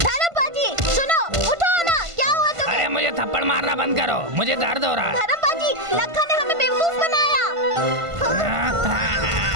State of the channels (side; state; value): left; late; 1.5 ms